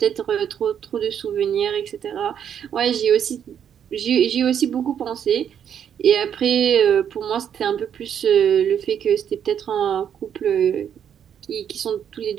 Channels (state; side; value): quieter; left; 8.7 dB